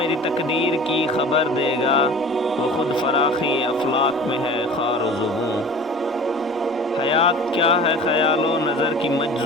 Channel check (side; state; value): both; normal; correlation 0.41